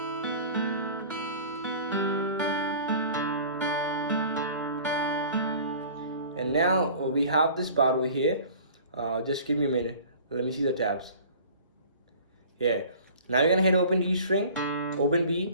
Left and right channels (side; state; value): both; inverted; correlation -0.45